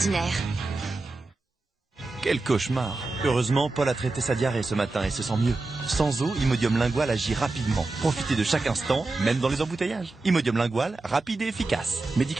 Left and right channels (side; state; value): left; quieter; 3.3 dB